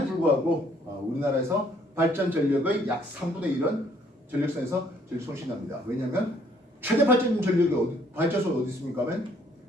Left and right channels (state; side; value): normal; both; correlation 0.64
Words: 불구하고 우리나라에서 발전 전력의 약 3분의 1은 전력선에서 전력 손실납니다. 왜냐하면 최대 발전 전력이 발전소는 어디 있습니까? 하면